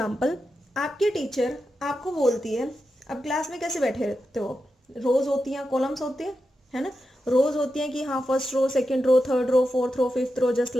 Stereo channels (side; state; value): both; normal; correlation 0.89